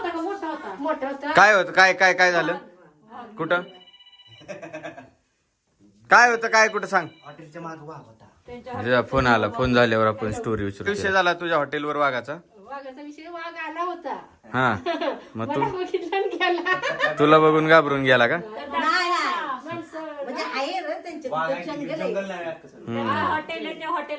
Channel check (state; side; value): identical; both; correlation 1.00